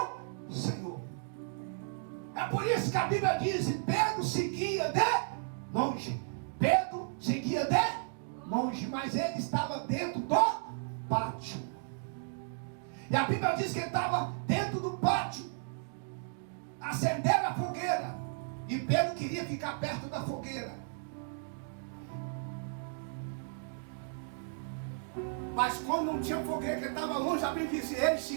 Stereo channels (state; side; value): silent; left; digital silence